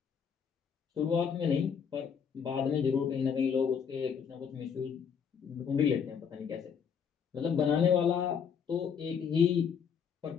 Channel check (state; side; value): quieter; right; 7.0 dB